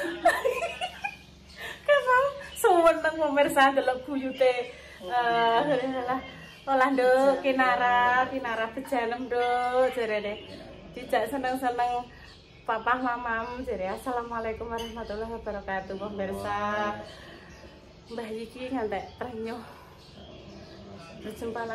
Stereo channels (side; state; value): both; identical; correlation 1.00